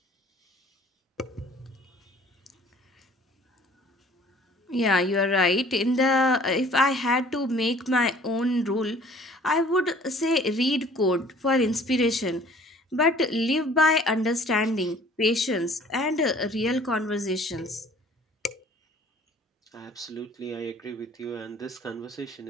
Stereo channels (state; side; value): normal; both; correlation 0.52